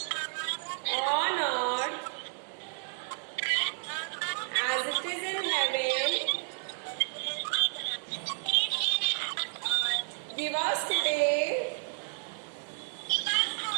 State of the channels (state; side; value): silent; left; digital silence